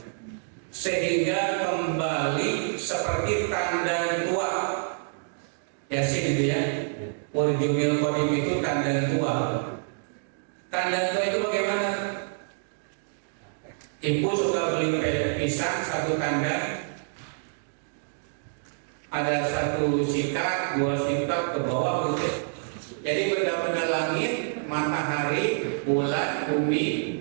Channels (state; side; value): silent; left; digital silence